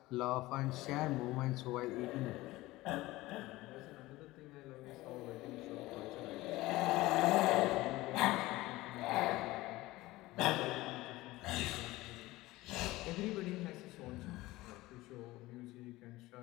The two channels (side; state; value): right; quieter; 18.8 dB